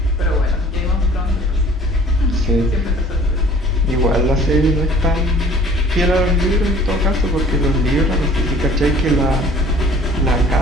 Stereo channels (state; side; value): normal; both; correlation 0.51